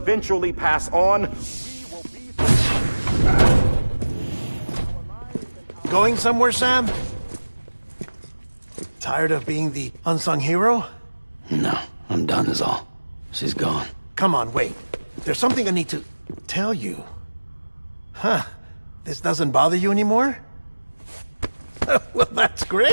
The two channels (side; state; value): both; inverted; correlation -1.00